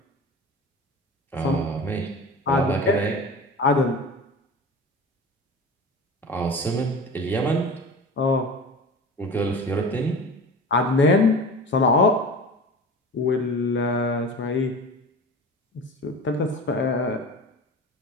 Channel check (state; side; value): normal; both; correlation 0.34